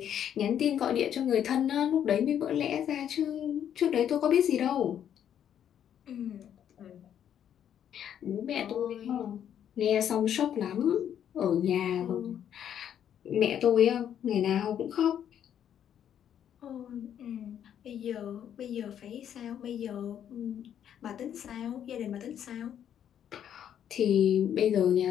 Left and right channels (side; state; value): right; quieter; 9.6 dB